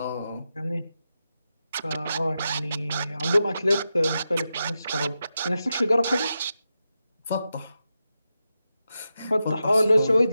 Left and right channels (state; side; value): inverted; both; correlation -0.89